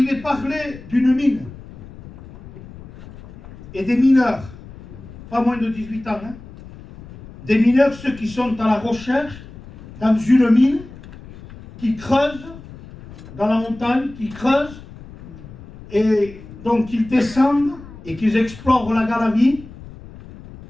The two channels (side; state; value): left; noise; rumble, 17 dB below the sound